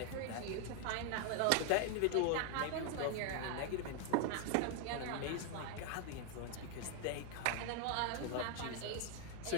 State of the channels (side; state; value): both; different; correlation 0.01